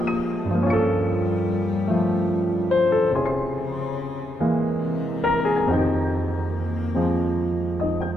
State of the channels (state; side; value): normal; both; correlation 0.81